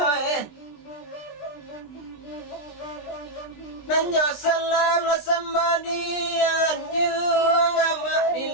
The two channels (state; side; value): late; right; 20 ms